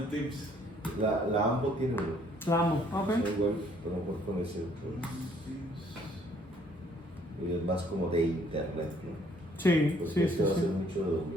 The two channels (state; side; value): normal; both; correlation 0.63